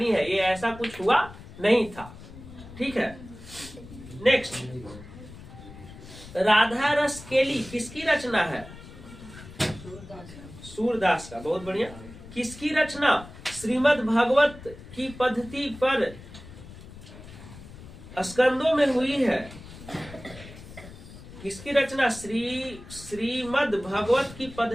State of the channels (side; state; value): left; noise; rumble, 16 dB below the sound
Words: है, ये ऐसा कुछ हुआ नहीं था। ठीक है, नेक्स्ट, राधा रस केली किसकी रचना है? सूरदास का। बहुत बढ़िया। किसकी रचना श्रीमद् भागवत की पद्धति पर स्कंदों में हुई है? किसकी रचना श्रीमद् भागवत की